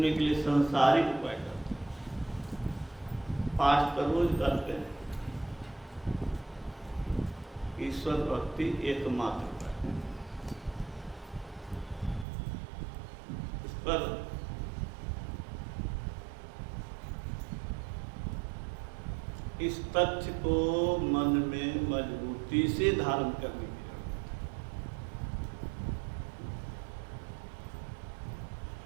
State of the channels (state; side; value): drops out; left; at 12.2 s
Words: के लिए संसारिक उपाय करते हैं। पाठ तो रोज करते हैं। ईश्वर भक्ति एकमात्र उपाय है। इस पर इस तथ्य को मन में मजबूती से धारण करने की जरूरत है